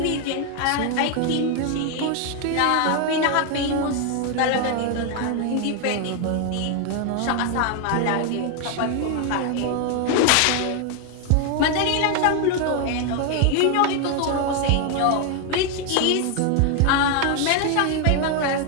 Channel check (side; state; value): both; different; correlation 0.01